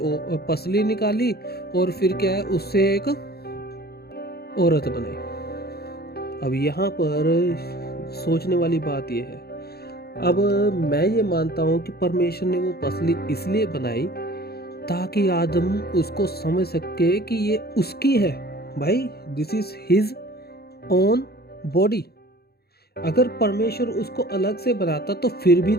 पसली निकाली और फिर क्या है उससे एक औरत बनाई। अब यहाँ पर सोचने वाली बात यह है, अब मैं ये मानता हूँ कि परमेश्वर ने वो पसली इसलिए बनाई ताकि आदम उसको समझ सके कि ये उसकी है भाई, this is his own body. अगर परमेश्वर उसको अलग से बनाता तो फिर भी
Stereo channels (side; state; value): right; late; 0.46 ms